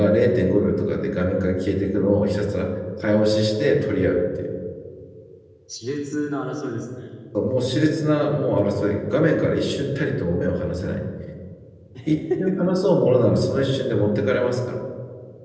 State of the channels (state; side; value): identical; both; correlation 1.00